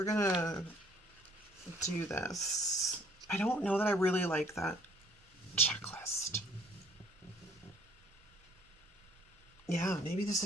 gonna do this, I don't know that I really like that checklist. Yeah, maybe this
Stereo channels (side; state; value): right; noise; rumble, 29 dB below the sound